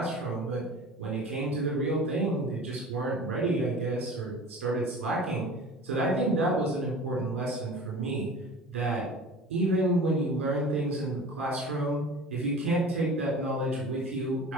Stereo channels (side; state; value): both; normal; correlation 0.39